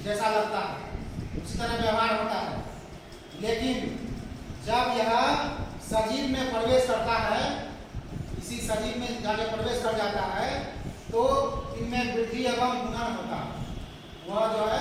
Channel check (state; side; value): identical; both; correlation 1.00